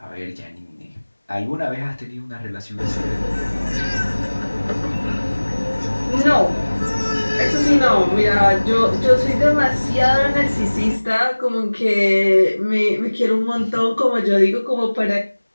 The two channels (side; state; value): both; inverted; correlation -1.00